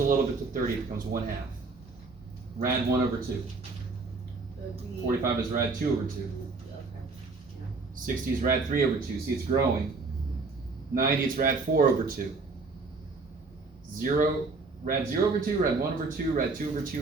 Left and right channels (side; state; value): left; quieter; 3.9 dB